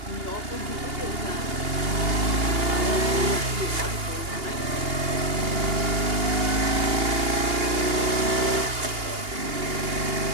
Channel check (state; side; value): late; left; 2.8 ms